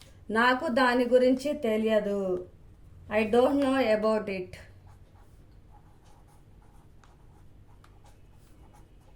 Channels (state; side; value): identical; both; correlation 1.00